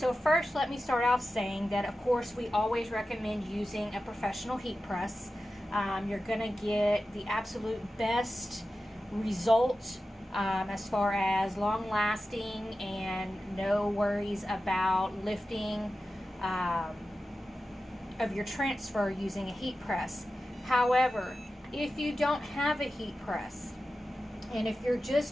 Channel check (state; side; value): normal; both; correlation 0.93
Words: first, let me start off saying that of course we always recommend using a professional heat press. You're going to get the absolute best result as far as long lasting and no worries about lifting of your transfer using a heat press. However, if you don't have a heat press and if you're